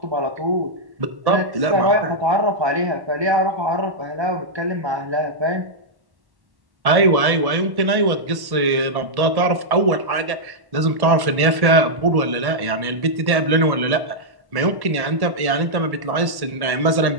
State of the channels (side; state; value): left; late; 1.1 ms